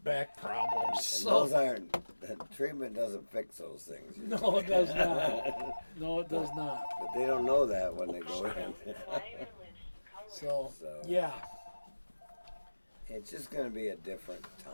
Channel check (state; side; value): inverted; both; correlation -1.00